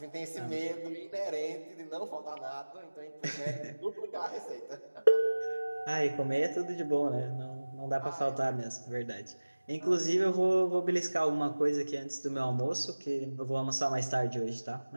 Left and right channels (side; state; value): both; inverted; correlation -1.00